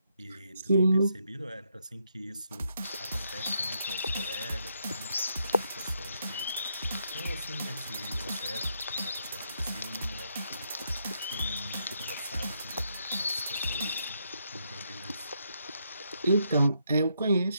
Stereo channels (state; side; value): inverted; both; correlation -0.77